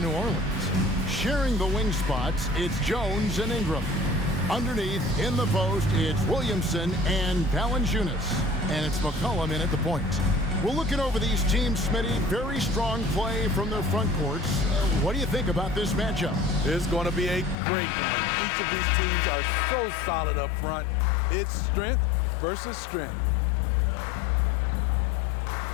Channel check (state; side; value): drops out; right; at 17.6 s